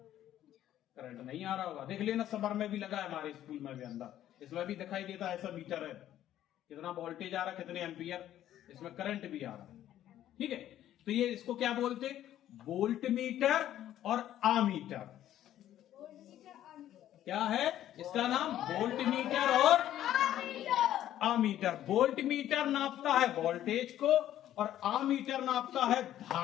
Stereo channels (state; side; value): quieter; right; 12.1 dB